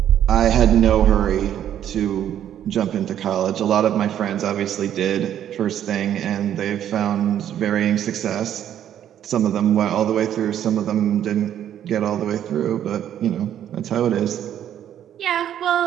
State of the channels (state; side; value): quieter; left; 10.5 dB